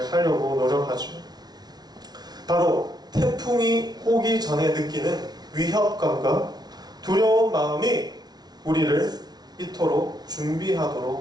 하려고 노력하죠. 바로 태풍이 오기 전에 느끼는 위협감과 두려운 마음이 우리를 이토록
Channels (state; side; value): late; left; 0.19 ms